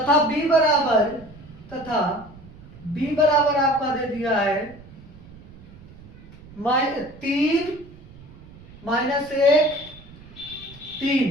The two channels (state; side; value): noise; right; rumble, 20 dB below the sound